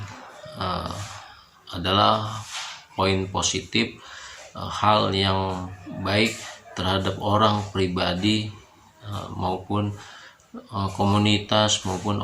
adalah poin positif, hal yang baik terhadap orang pribadi maupun komunitas maupun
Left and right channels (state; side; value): identical; both; correlation 1.00